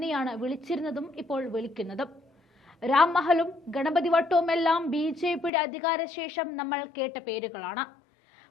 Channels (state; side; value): drops out; right; at 5.5 s